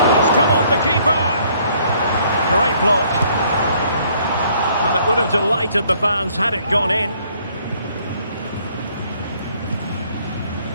It's come off the keeper! Great block. And it would have delighted the fans had it gone in.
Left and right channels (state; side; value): inverted; both; correlation -0.63